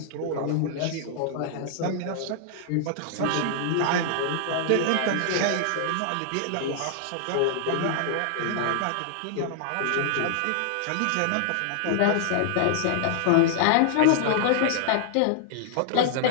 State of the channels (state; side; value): different; both; correlation -0.01